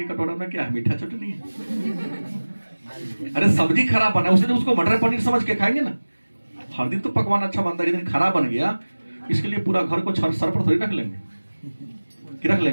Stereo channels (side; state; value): both; inverted; correlation -1.00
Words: कटोरा में क्या है? मीठा चटनी है। अरे सब्जी खराब बना, उस दिन उसको मटर पनीर समझ के खाएंगे ना। हर दिन तो पकवान अच्छा बनता है, जिस दिन खराब बन गया इसके लिए पूरा घर को सर पर थोड़ी रख लेंगे कि रख